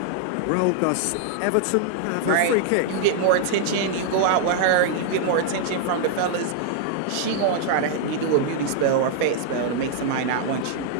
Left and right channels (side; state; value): both; different; correlation -0.01